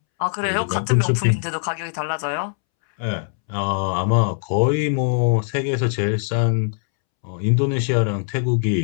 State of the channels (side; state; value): right; silent; 65 dB below the other